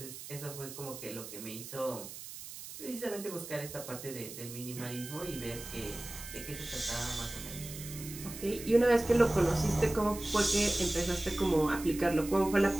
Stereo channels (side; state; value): right; noise; hiss, 12 dB below the sound